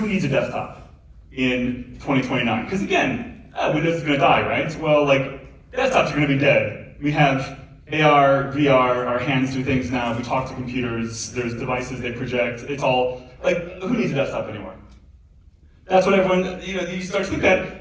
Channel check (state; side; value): identical; both; correlation 1.00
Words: needs a desktop in 2029? Because again, Windows is going to die, right? Well, like, desktops are going to be dead. We have AR, VR, our hands do things now. We talk to computers. There's devices they project. It's all, like, who needs a desktop anymore? That's what everyone, you start to look